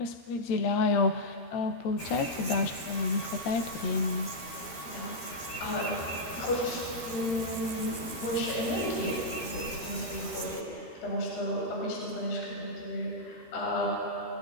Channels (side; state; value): right; late; 13 ms